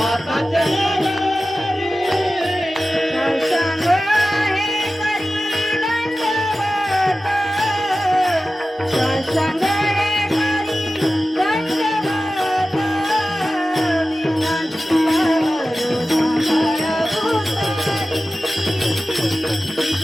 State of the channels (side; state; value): both; normal; correlation 0.95